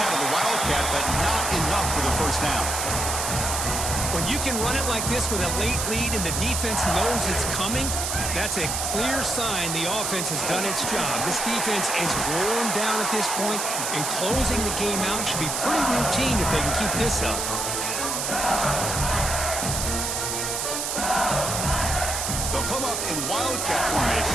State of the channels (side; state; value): right; noise; hiss, 1 dB below the sound